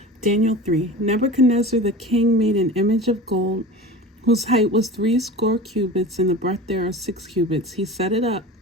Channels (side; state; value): both; normal; correlation 0.34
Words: Daniel 3. Nebuchadnezzar the king made an image of gold, whose height was 60 cubits, and the breadth thereof 6 cubits. He set it up